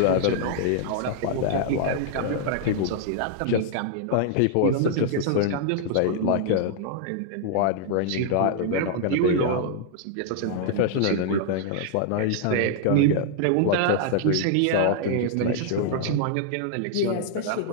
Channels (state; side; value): different; both; correlation -0.01